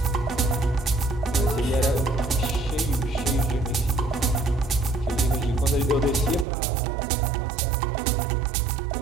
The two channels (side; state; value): left; drops out; at 6.5 s